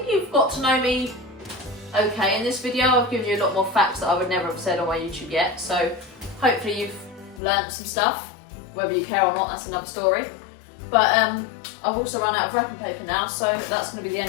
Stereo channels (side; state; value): right; drops out; at 7.4 s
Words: you've got to know me okay in this video. I've given you a lot more facts that I would never have said on my YouTube yet, so hopefully you've learnt some stuff. Whether you care or not, that's another story. But I've also run out of wrapping paper now, so that's going to be the end